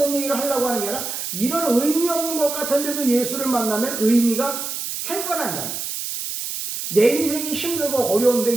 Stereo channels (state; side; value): noise; right; hiss, 5 dB below the sound